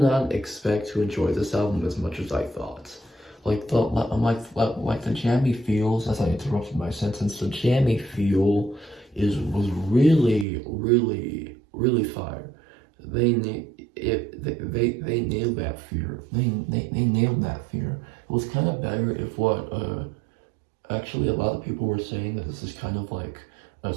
not expect to enjoy this album as much as I thought. Like the jammy feels, as I interrupted my sentence, the jammy feel was really fire. They nailed that fear. They nailed that fear. It was kind of better if what actually a lot of people were saying that this is kind of like a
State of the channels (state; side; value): drops out; left; at 10.5 s